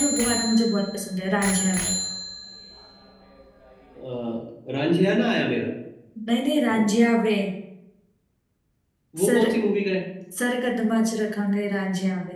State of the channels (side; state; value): both; identical; correlation 1.00